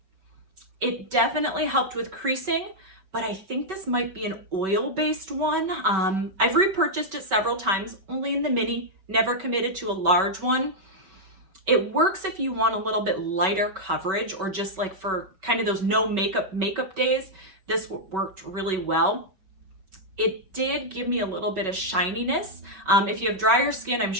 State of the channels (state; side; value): late; left; 5.2 ms